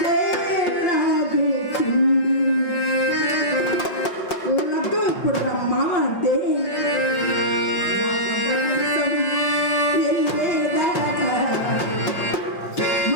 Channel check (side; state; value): right; late; 5.7 ms